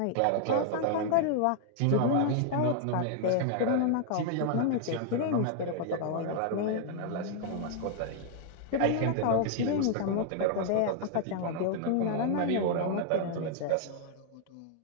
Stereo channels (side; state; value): both; different; correlation 0.00